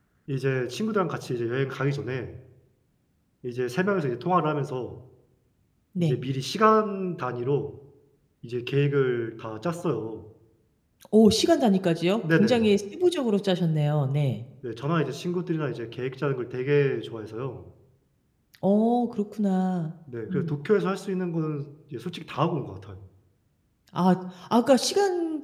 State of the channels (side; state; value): both; identical; correlation 1.00